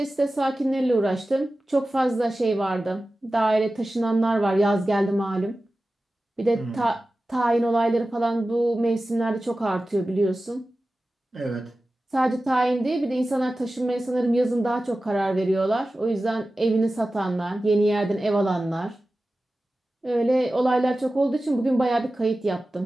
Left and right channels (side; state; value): both; normal; correlation 0.95